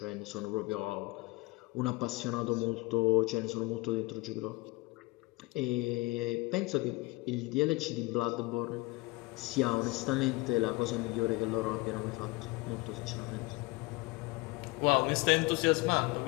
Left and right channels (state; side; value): quieter; right; 23.4 dB